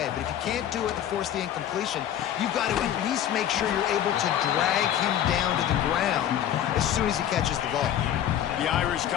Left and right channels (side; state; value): right; quieter; 10.7 dB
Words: but if you can't do it and force the incompletion, you've got to at least make sure you're able to drag him down to the ground as soon as he catches the ball. The Irish